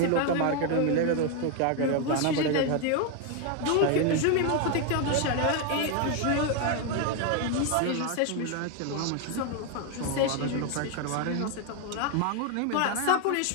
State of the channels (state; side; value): different; both; correlation 0.01